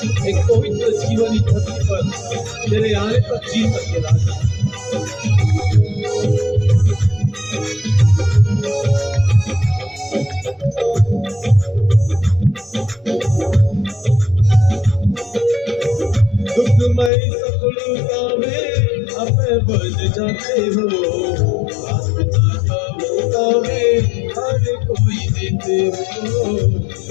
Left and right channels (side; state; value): right; drops out; at 17.1 s